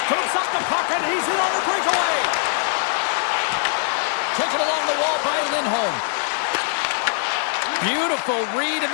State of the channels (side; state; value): right; silent; digital silence